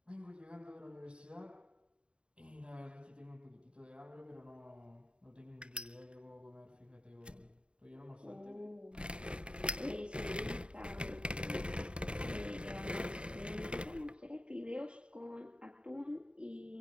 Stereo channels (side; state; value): left; late; 0.054 ms